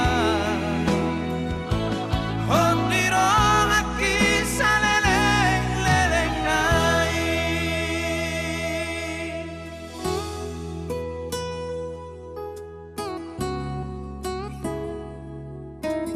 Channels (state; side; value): identical; both; correlation 1.00